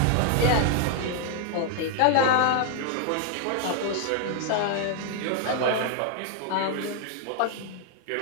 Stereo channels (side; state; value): both; different; correlation 0.00